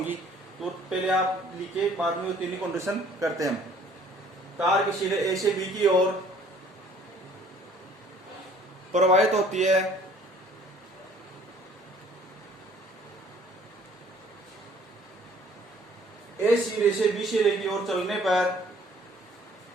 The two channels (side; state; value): both; normal; correlation 0.56